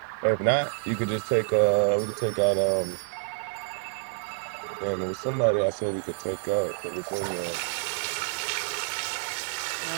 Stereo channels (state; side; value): silent; left; digital silence